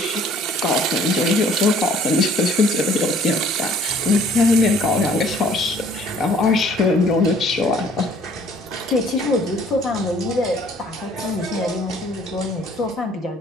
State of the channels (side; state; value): both; normal; correlation 0.57